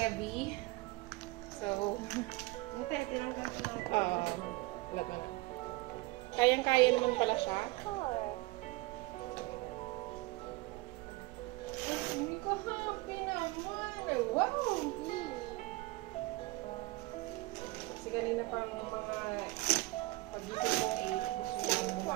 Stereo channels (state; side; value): quieter; left; 21.9 dB